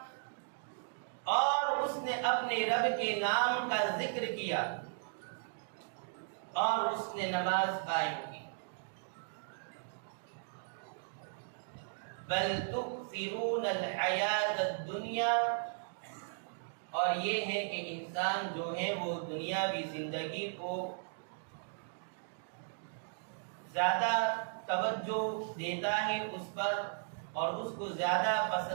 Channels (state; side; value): silent; left; digital silence